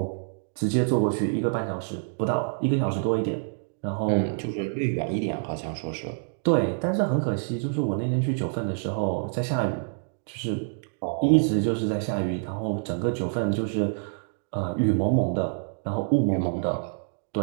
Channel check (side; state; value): left; silent; digital silence